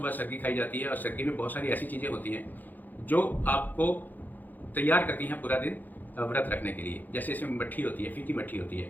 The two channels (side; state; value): right; late; 0.085 ms